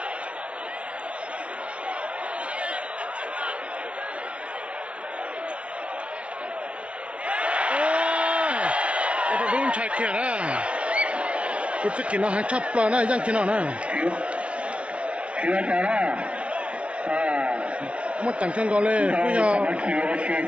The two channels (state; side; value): late; left; 0.061 ms